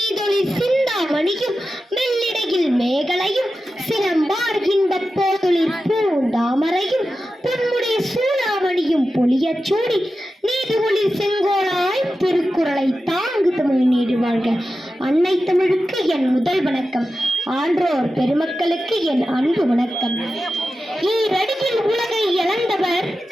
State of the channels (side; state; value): both; normal; correlation 0.92